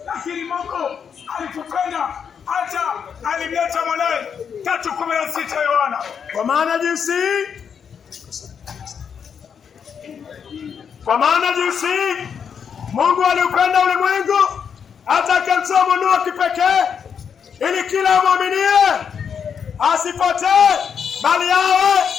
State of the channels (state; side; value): quieter; right; 7.1 dB